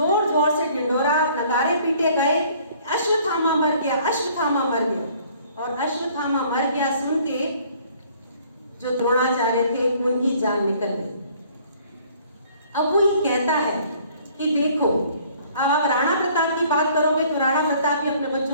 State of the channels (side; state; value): both; inverted; correlation -0.57